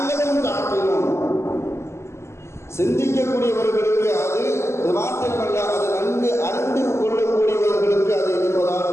தஅகிலூன், சிந்திக்கக்கூடியவர்களுக்கு அது மாத்திரமல்ல அது நன்கு அறிந்து கொள்ளக்கூடியவர்களுக்கு அது என்பதாக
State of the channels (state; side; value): late; right; 0.13 ms